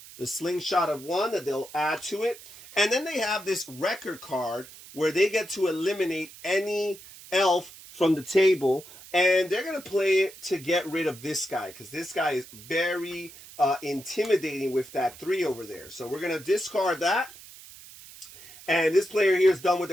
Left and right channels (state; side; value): noise; right; hiss, 18 dB below the sound